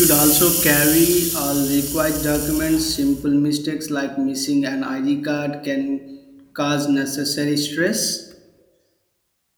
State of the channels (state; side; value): identical; both; correlation 1.00